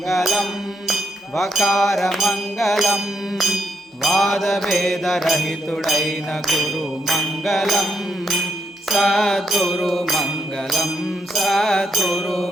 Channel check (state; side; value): normal; both; correlation 0.78